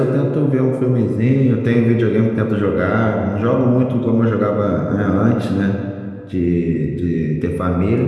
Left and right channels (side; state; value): both; identical; correlation 1.00